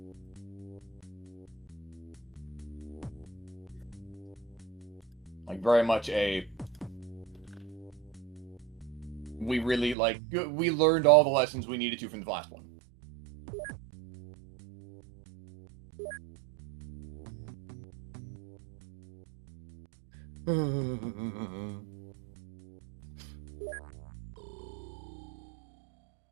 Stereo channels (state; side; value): drops out; left; at 10.0 s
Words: Like, very much a... We really, like, we learned all the lessons we needed to from the last one.